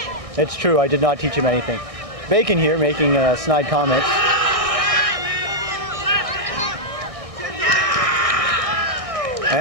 It's true, I did not teach him anything. Bacon here making snide comments.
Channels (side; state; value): left; late; 1.6 ms